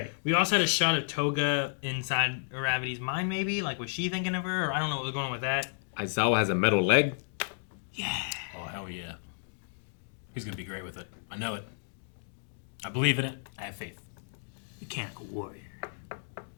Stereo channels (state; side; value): silent; right; digital silence